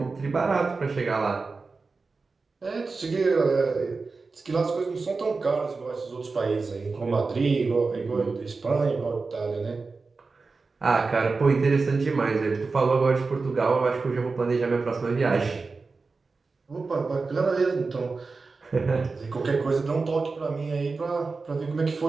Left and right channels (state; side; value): quieter; left; 4.1 dB